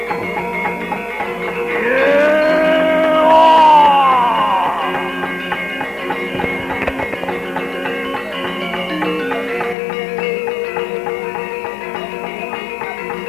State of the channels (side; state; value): right; drops out; at 9.8 s